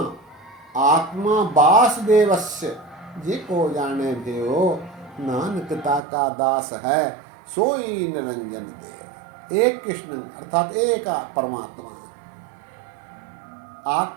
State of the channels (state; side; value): drops out; left; at 6.0 s